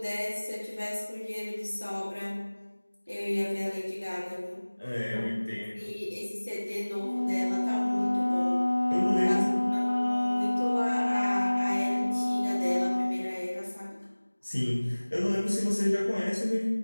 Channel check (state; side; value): inverted; both; correlation -1.00